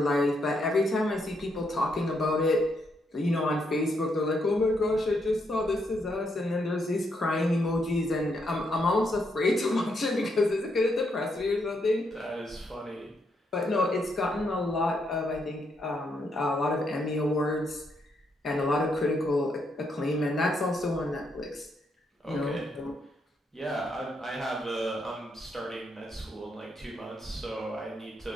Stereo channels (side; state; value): both; normal; correlation 0.77